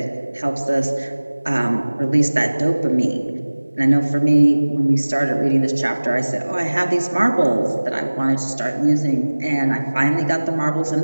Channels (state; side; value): inverted; both; correlation -1.00